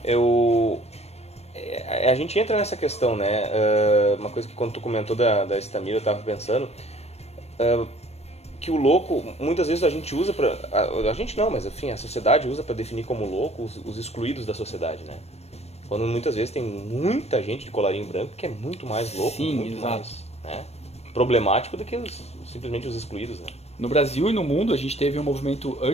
a gente entra nessa questão, né? Uma coisa que quando tu comentou da Estamira, eu tava pensando, que o louco, muitas vezes a gente usa a gente não, mas enfim, a sociedade usa para definir como louco os excluídos da sociedade, né? Quando muitas vezes tem muita gente de colarinho branco que é muito mais louco, sim, muito exato. mais, né, problemático do que simplesmente os excluídos, né? No Brasil e no mundo a gente teve um movimento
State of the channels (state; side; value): late; right; 0.31 ms